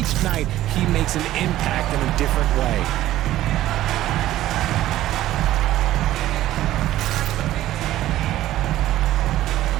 night, he makes an impact in a different way.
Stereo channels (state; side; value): quieter; left; 14.3 dB